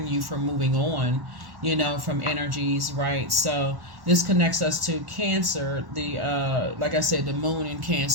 you for moving on, from energies, right? So this connects us to Cancer. The like I said, the Moon in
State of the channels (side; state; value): left; late; 1.1 ms